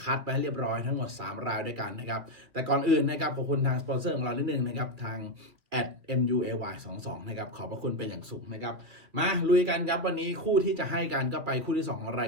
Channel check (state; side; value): late; left; 2.5 ms